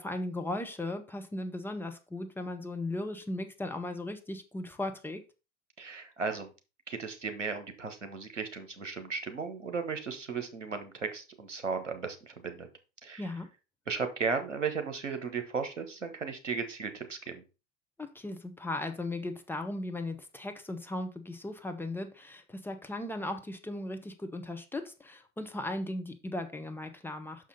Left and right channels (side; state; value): both; normal; correlation 0.52